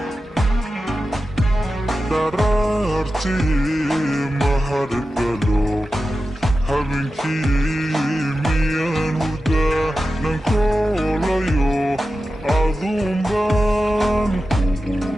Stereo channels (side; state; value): both; normal; correlation 0.92